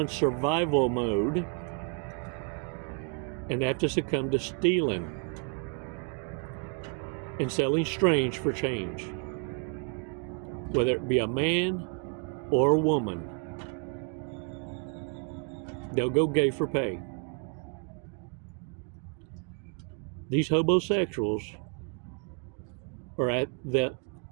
survival mode and have to succumb to stealing and selling strange for change, whether it be a man or a woman. They'll go gay for pay. These homosexuals are at the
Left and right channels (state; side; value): quieter; left; 36.7 dB